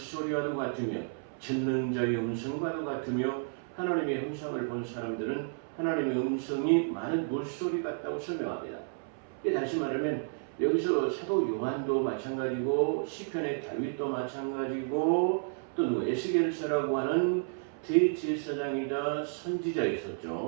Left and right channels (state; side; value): silent; left; 57 dB below the other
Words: 같으며 전능자의 음성과도 같으며 하나님의 형상을 본 사람들은 하나님의 음성이 많은 물소리 같다고 설명합니다. 다시 말하면 여기서 사도 요한도 마찬가지고 시편의 다윗도 마찬가지고 또 에스겔서라고 하는 대제사장이다 선지자